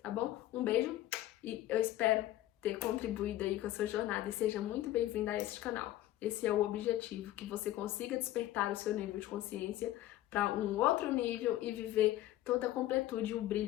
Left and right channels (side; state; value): right; quieter; 14.5 dB